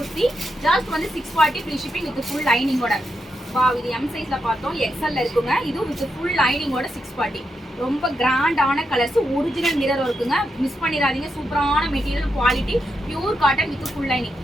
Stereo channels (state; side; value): normal; both; correlation 0.84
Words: ஜஸ்ட் வந்து 640 ஃப்ரீ ஷிப்பிங் வித் ஃபுல் லைனிங்கோட. வா, இது எம் சைஸில் பார்த்தோம். எக்ஸல்ல இருக்குங்க. இதுவும் வித் ஃபுல் லைனிங்கோட 640. ரொம்ப கிராண்டான கலர்ஸ். ஒரிஜினல் மிரர் இருக்குங்க. மிஸ் பண்ணிடாதீங்க. சூப்பரான material quality. Pure cotton with full lining.